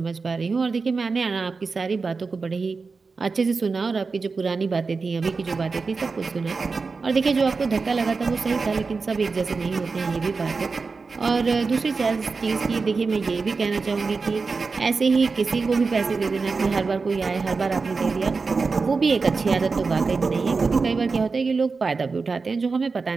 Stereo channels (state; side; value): quieter; left; 4.4 dB